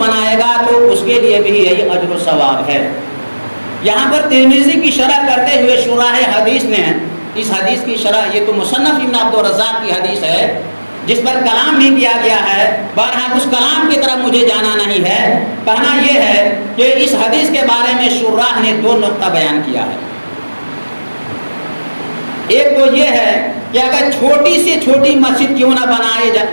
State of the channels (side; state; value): both; inverted; correlation -1.00